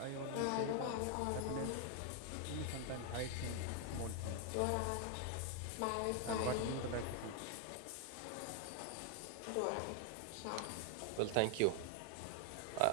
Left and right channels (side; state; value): both; different; correlation 0.01